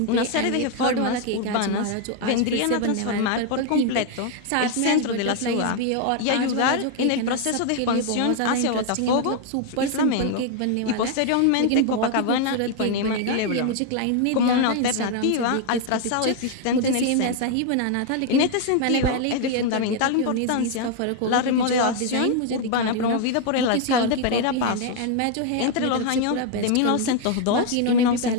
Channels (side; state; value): both; different; correlation 0.00